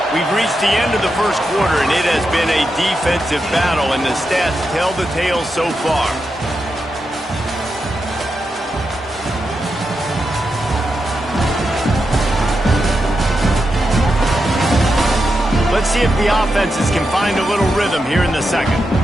We've reached the end of the first quarter, and it has been a defensive battle, and the stats tell the tale so far. Let's see if the offenses can find a little rhythm here in the second.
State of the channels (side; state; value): both; normal; correlation 0.87